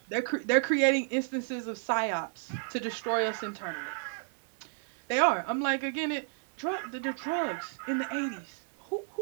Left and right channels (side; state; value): left; silent; digital silence